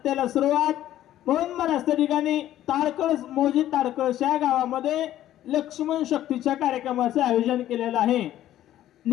सुरुवात म्हणून महाराज त्या ठिकाणी ताडकळस मोजी ताडकळस या गावामध्ये लक्ष्मण शक्तीच्या कार्यक्रमाचे आयोजन केलेलं आहे।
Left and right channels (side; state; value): right; quieter; 12.9 dB